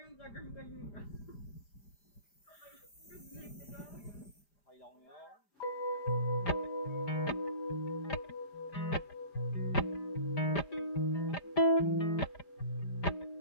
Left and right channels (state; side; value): late; right; 5.0 ms